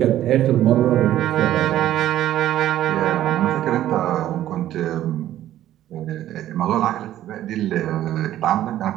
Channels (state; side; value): quieter; left; 12.8 dB